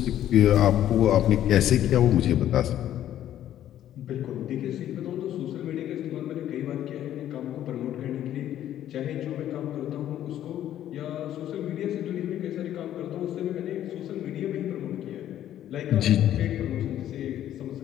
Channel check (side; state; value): right; quieter; 11.7 dB